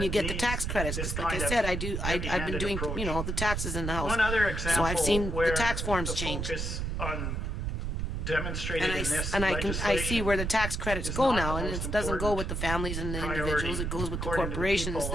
you get the tax credits. Because like I said, I've been doing, you know, the taxes in the house. So I've seen the tax forms change. And I see where the tax credits go now, and it doesn't go with the families and the individuals. It goes with the corporations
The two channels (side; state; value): right; noise; rumble, 2 dB below the sound